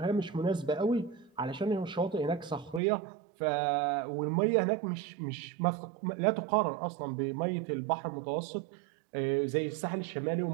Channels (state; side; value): drops out; left; at 2.8 s